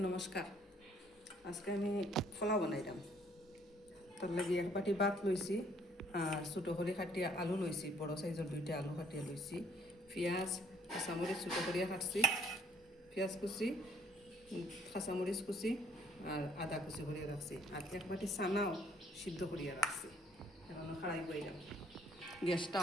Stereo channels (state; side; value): normal; both; correlation 0.62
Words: নমস্কার। আজকে আমি পোলাও বানাইলাম। তার লাগি এক বাটি ভাত লইছি আর ছোটো করে কাটিয়া আলু লইছি, বড় সাইজের 2টা আলু কাটিয়া লইছি, পেঁয়াজ কাঁচামরিচ ছোটো করিয়া কাটছি, পেঁয়াজ কুচি কাঁচামরিচ কুচি আর আদা কুচি করিয়া রাখছি, আর এক বাটি চানাও সিদ্ধ করিয়া রাখছি। এখন খাড়াই বইলাম, গ্যাসটা